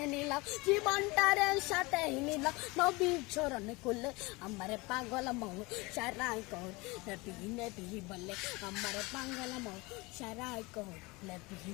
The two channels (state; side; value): quieter; right; 24.3 dB